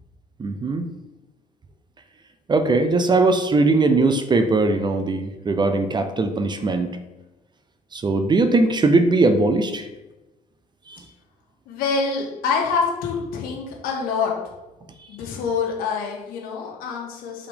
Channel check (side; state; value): both; normal; correlation 0.60